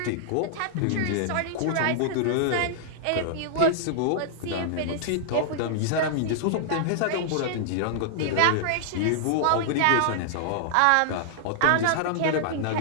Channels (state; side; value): different; both; correlation -0.01